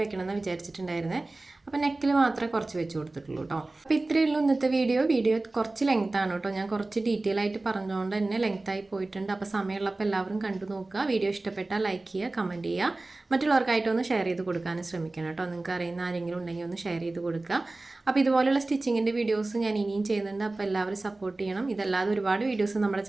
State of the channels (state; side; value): quieter; left; 3.0 dB